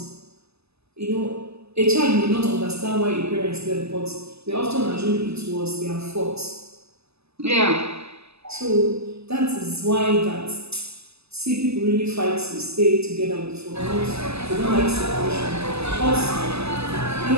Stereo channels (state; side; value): late; left; 0.79 ms